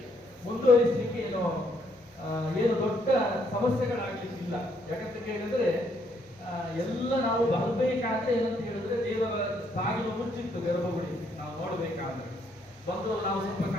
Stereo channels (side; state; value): both; normal; correlation 0.71